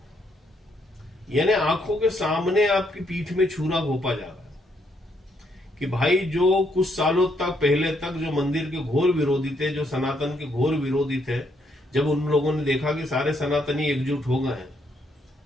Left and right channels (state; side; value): normal; both; correlation 0.74